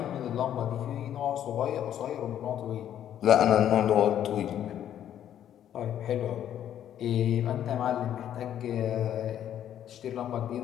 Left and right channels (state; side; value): quieter; right; 10.5 dB